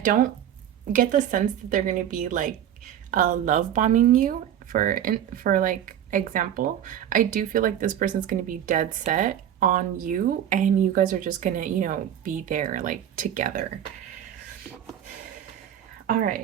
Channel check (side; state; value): left; quieter; 10.4 dB